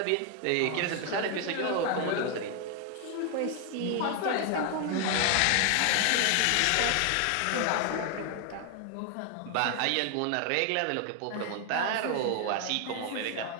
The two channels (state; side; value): different; both; correlation 0.01